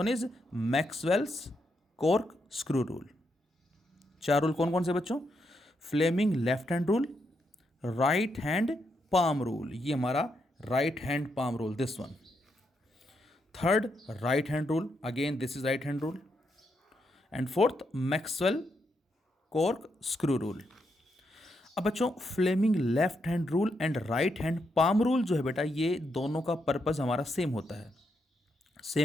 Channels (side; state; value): both; normal; correlation 0.80